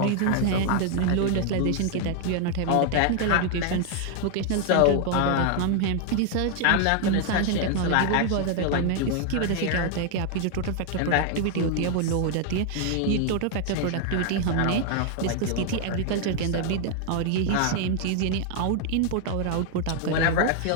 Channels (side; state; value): both; different; correlation 0.00